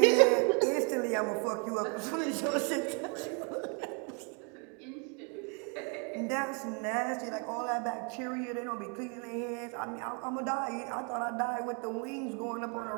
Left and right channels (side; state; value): left; quieter; 36.0 dB